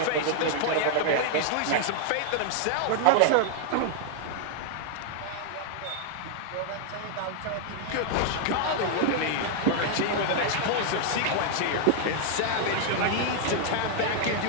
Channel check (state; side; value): different; both; correlation 0.00